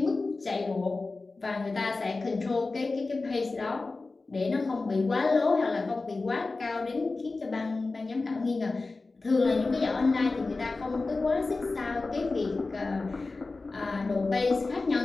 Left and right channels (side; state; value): right; quieter; 3.6 dB